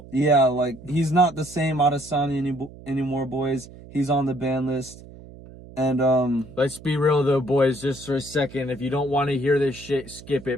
Yeah, like he's not the same Adesanya anymore, boys. He's on the ban list. And let's be real though, boys, just for a second. If you don't want to hear this shit, skip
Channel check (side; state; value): right; noise; hum, 18 dB below the sound